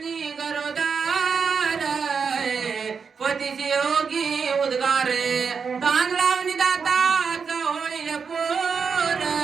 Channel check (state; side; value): quieter; left; 5.8 dB